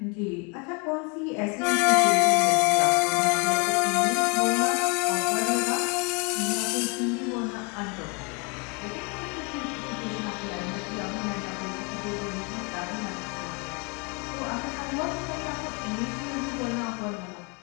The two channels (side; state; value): right; quieter; 31.7 dB